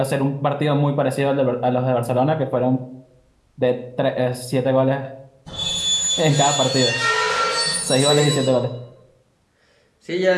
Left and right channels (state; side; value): identical; both; correlation 1.00